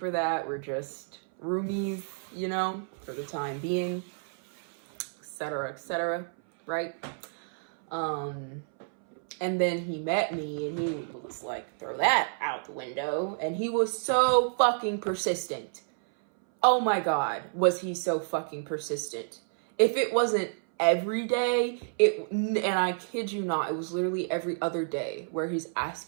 that. We're just roomies, you know, for the time being, etc., right? And then he met me and he was like, throw that out the window. And he was so fucking persistent. Oh my God, was he so fucking persistent. If it wasn't every day, and I kid you not, it was literally every other day where he's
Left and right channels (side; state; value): left; silent; 58 dB below the other